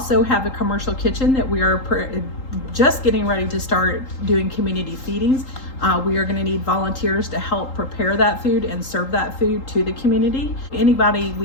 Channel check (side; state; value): right; late; 3.8 ms